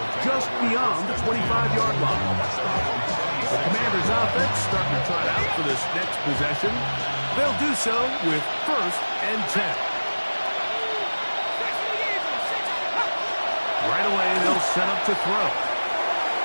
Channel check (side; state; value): both; inverted; correlation -1.00